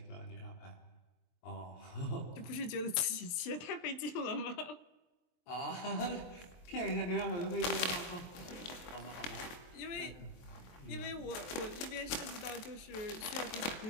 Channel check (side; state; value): right; late; 23 ms